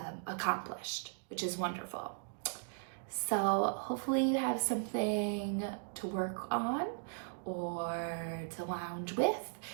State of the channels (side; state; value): left; silent; digital silence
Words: accomplished, which is wonderful. So hopefully you have something to work on or to lounge with,